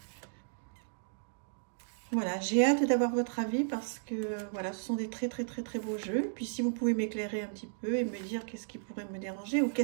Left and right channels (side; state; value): left; silent; digital silence